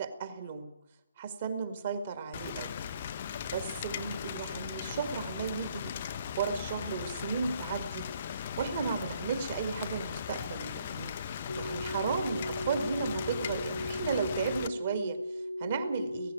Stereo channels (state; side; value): inverted; both; correlation -0.67